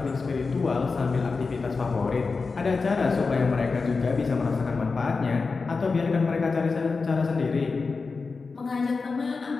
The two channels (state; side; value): quieter; right; 4.4 dB